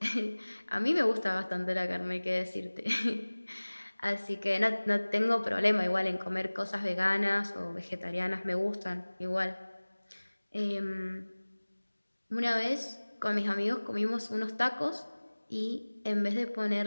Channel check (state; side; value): inverted; both; correlation -1.00